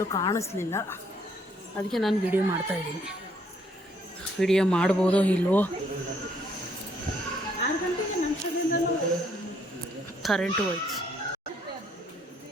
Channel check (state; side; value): normal; both; correlation 0.68